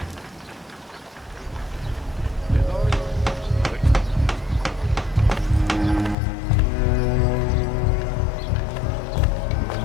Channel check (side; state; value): right; drops out; at 6.2 s